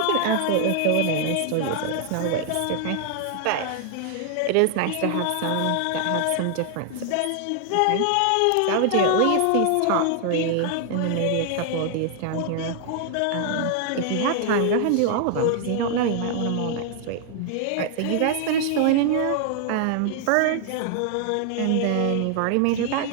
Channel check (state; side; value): different; both; correlation 0.00